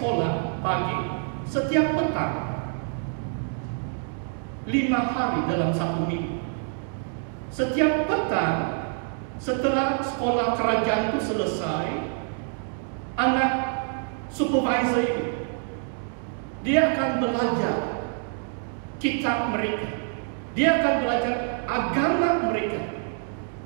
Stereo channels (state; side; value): silent; left; 57 dB below the other